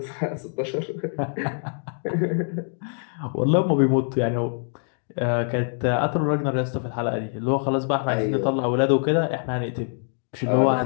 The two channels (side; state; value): right; silent; digital silence